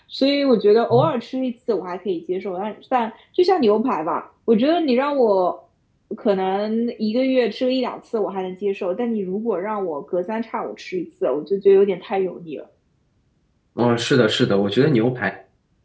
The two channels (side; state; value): both; identical; correlation 1.00